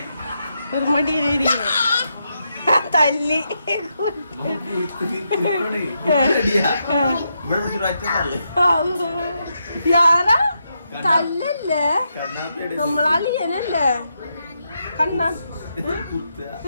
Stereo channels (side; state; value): both; inverted; correlation -0.83